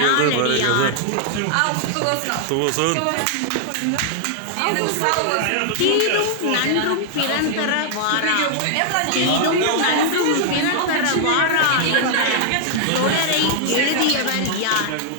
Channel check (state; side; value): different; both; correlation -0.01